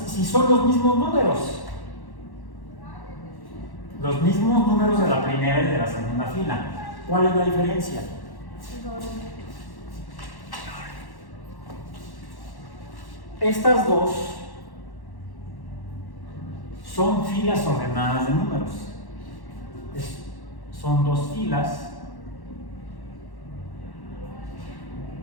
los mismos números. Los mismos números de la primera y de la segunda fila. ¿Cuál es la diferencia? Estas dos son filas ordenadas de números. Son dos filas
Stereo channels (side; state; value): right; late; 1.1 ms